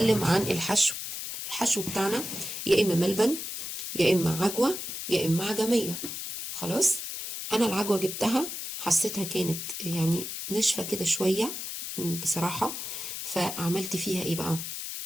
عن الحشو. الحشو بتاعنا يا اما ملبن يا اما عجوة يا اما عجمية. خلاص. انا العجوة جبتها حسيتها كانت يعني ناشفة كده شوية بصراحة، فعملت فيها ايه بقى؟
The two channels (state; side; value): noise; left; hiss, 6 dB below the sound